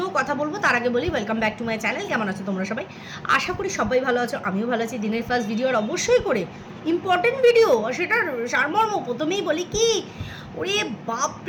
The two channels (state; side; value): identical; both; correlation 1.00